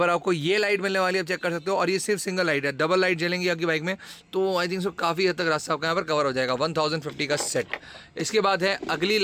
आपको ये लाइट मिलने वाली है, आप चेक कर सकते हो। और ये सिर्फ सिंगल लाइट है, डबल लाइट जलेंगी आपकी बाइक में, तो आई थिंक सो काफ़ी हद तक रास्ता आपका यहाँ पर कवर हो जाएगा। 1050 का सेट। इसके बाद है अगली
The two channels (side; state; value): both; identical; correlation 1.00